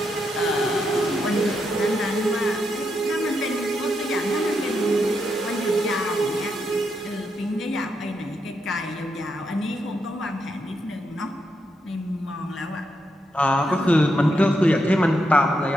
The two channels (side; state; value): both; normal; correlation 0.82